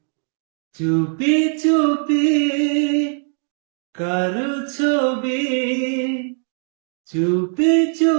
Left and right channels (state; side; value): silent; left; 61 dB below the other